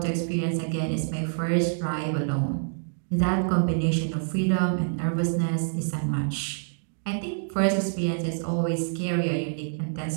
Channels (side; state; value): left; silent; digital silence